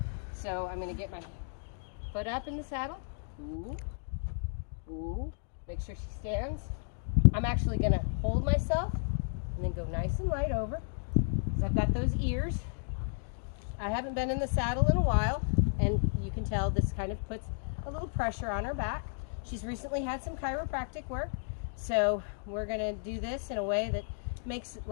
so I'm going to get my foot up in the saddle. Ooh, ooh. Make sure she stands. I'm actually going to hold myself and then go nice and light over, because I've got those ears. I haven't been in the saddle in a while, and you can tell this kind of puts a little pressure on her back. She's recently had some chiropractic work, so we're going to do this in a way that makes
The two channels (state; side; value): silent; right; digital silence